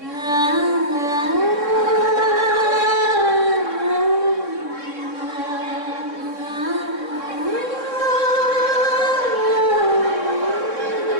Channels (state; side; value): late; left; 3.6 ms